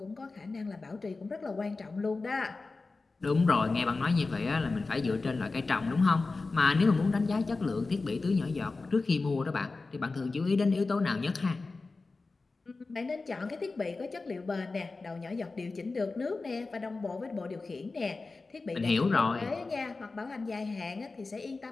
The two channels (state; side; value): quieter; right; 3.7 dB